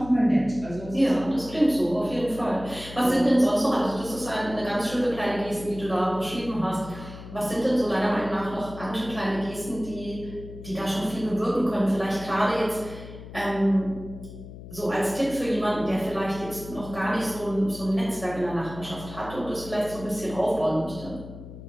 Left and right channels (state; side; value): noise; left; hum, 14 dB below the sound